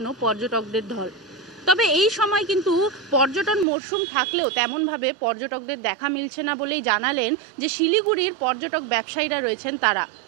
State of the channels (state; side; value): drops out; left; at 3.7 s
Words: পর্যটকদের ঢল। তবে এই সময় কিন্তু পর্যটন মরশুম থাকলেও তেমনভাবে পর্যটকদের দেখা মিলছে না বলেই জানালেন যে শিলিগুড়ির পর্যটক ব্যবসায়ীরা রয়েছেন তারা।